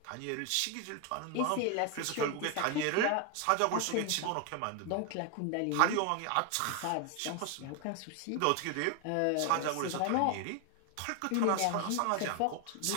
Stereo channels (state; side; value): different; both; correlation 0.00